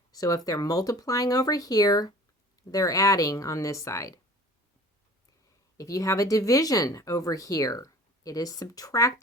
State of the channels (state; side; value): normal; both; correlation 0.44